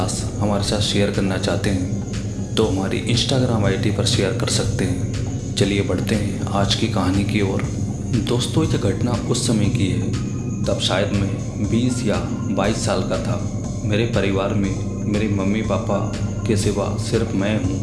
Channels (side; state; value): both; identical; correlation 1.00